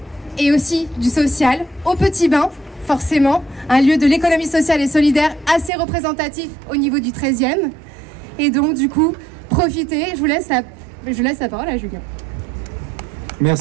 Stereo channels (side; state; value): left; drops out; at 5.7 s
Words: et aussi du social au Petit Bain, forcément, un lieu de l'économie sociale et solidaire assez représentatif au niveau du 13e. Et donc du coup, profitez, je laisse la parole à Julien.